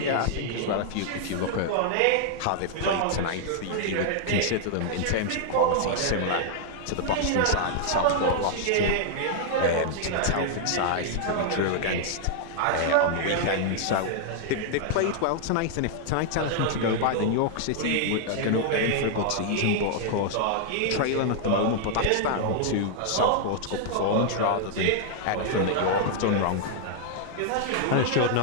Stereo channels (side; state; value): both; different; correlation -0.01